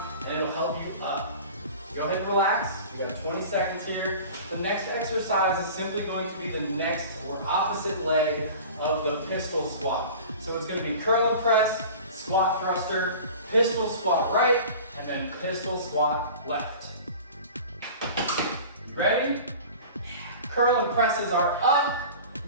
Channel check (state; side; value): inverted; both; correlation -0.39